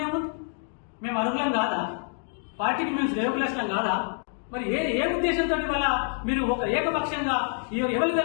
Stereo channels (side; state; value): right; silent; 56 dB below the other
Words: ఏముంది? మేము అర్హులం కాదా? పార్టీకి మేము శ్రేయోభిలాషం కాదా? మరి ఏ ఉద్దేశంతో వల్ల మీరు ఒక ఏకపక్షంగా ఎవరు